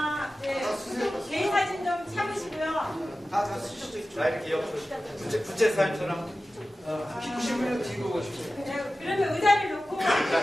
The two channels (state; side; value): normal; both; correlation 0.95